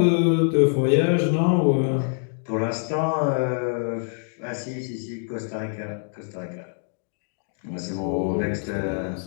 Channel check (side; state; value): right; silent; 62 dB below the other